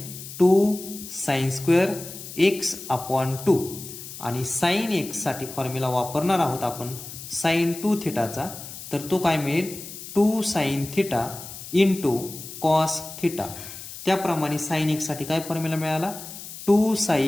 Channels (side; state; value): left; noise; hiss, 12 dB below the sound